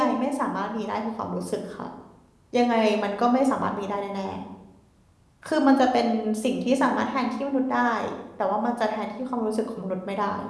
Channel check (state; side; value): identical; both; correlation 1.00